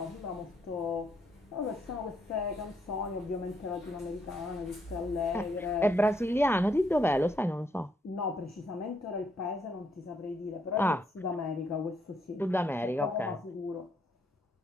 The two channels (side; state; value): both; normal; correlation 0.74